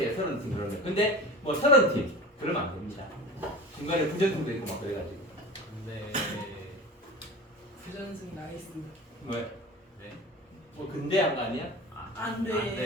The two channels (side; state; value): both; normal; correlation 0.34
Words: 30팀 그러면. 근데 뭐 30팀 그러면 안 됩니다. 중간에 부전승도 있고 막 그래가지고. 네. 부전승 나이스. 왜? 네. 뭐 근대한 거 아니야? 안 돼. 안